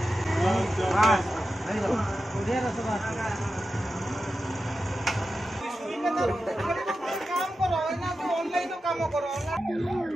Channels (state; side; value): normal; both; correlation 0.91